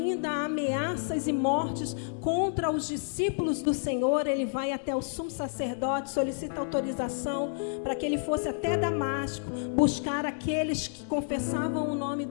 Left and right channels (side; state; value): right; silent; digital silence